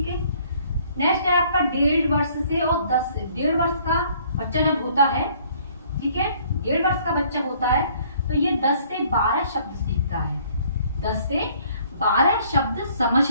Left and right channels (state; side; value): inverted; both; correlation -0.60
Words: है। नेक्स्ट है आपका 1.5 वर्ष से और 10 से 1.5 वर्ष का बच्चा जब होता है, ठीक है, 1.5 वर्ष का बच्चा होता है, तो ये 10 से 12 शब्द सीखता है, 10 से 12 शब्द समझ